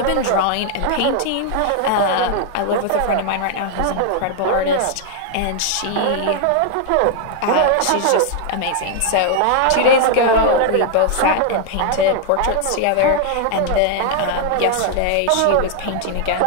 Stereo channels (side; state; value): both; different; correlation 0.00